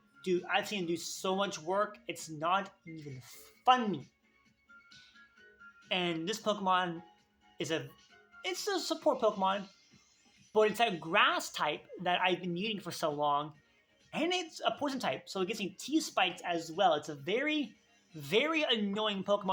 do so much work, it's not even funny. And this Pokemon is it's a support Pokemon, but it's a grass type that I've been using for so long, and it's a poison type, so it gets me T-Spikes as well. It's a very, very annoying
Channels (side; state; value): both; identical; correlation 1.00